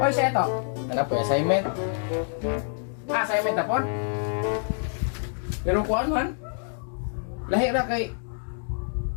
Oy, siya ito. Ano po, assignment? Assignment na po? Pero kuhaan man. Lahi ra kay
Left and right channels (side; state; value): right; silent; digital silence